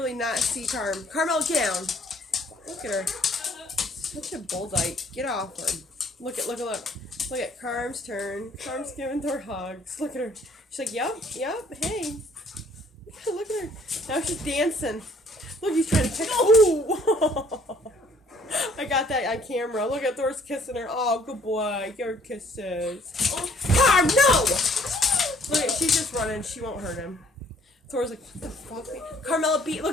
not see Carmella, get down. Look at her. Such a bulldyke. Get off her. Look. Look at Carm's turn. Carm's giving Thor hugs. Look at her. She's like, yep, hey. Look at her. Now she's dancing. Look, he's trying to pick. Oh! I got that on camera. Look at Thor's kissing her. Oh, good boy. Your kisses. Oh. Carm, no! Look, she's just running. She won't hurt him. Thor's like, what the fuck? Carmella beat.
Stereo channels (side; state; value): both; normal; correlation 0.61